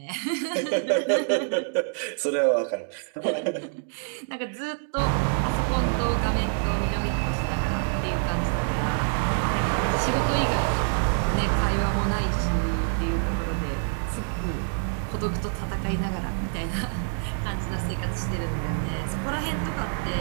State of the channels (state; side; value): silent; left; digital silence